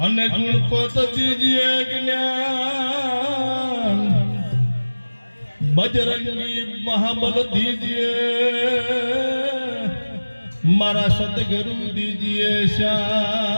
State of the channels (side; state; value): both; inverted; correlation -1.00